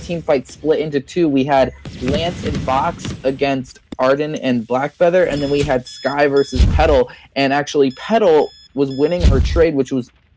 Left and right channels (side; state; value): both; identical; correlation 1.00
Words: team fight split into two. We had Lance and Box against Arden and Blackfeather, and then we had Sky versus Petal. And actually, Petal was winning her trade, which was